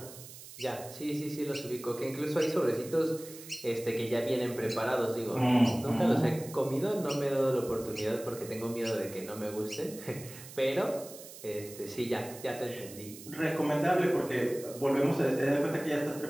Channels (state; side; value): noise; right; hiss, 15 dB below the sound